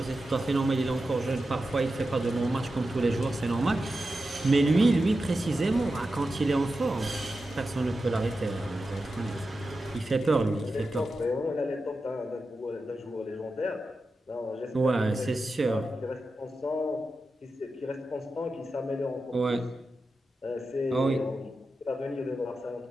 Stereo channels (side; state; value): both; normal; correlation 0.91